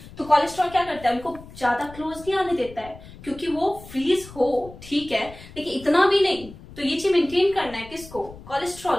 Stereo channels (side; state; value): left; noise; rumble, 18 dB below the sound